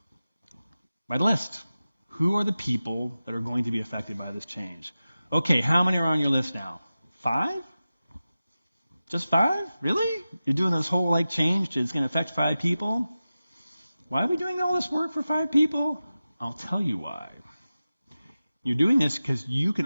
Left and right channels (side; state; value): both; inverted; correlation -0.95